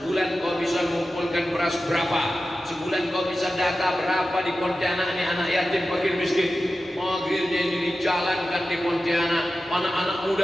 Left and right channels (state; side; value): normal; both; correlation 0.93